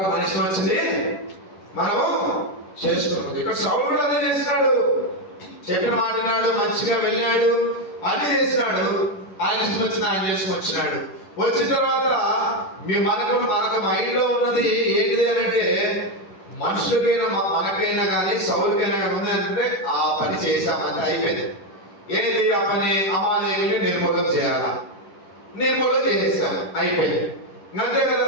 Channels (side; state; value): right; late; 10 ms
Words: మనిషి వచ్చింది, మనము చేసుకున్నాం. ఇక్కడ సౌలు కూడా అదే చేసినాడు. చెప్పిన మాట్లాడు, మంచిగా వెళ్ళాడు, అన్ని చేసినాడు. ఆయన ఇష్టం వచ్చింది ఆయన చేసుకొచ్చినాడు. వచ్చిన తర్వాత మనకు మైండ్ లో ఉన్నది ఏంటిది అంటే, మనుషులకైనా మనకైనా కానీ సౌలుకైనా ఉంది అంటే ఆ పని చేశామంటే అయిపోయింది. ఏది ఆ పని, అమాలేకుని నిర్మూలన చేయాలా, నిర్మూలన చేసేసాము, అయిపోయింది, అంతే